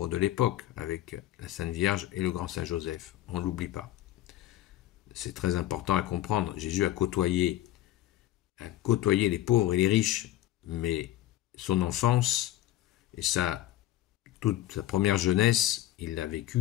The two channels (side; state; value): right; quieter; 14.0 dB